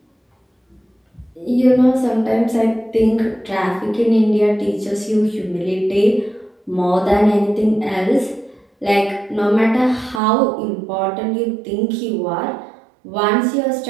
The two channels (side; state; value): left; drops out; at 10.2 s